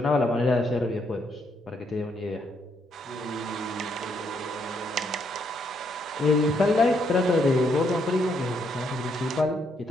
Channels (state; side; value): normal; both; correlation 0.74